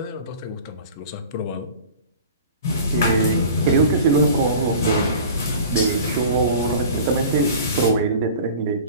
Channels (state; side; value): inverted; both; correlation -0.41